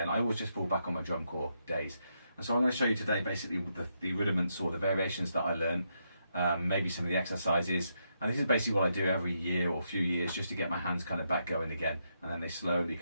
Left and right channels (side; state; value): both; inverted; correlation -0.80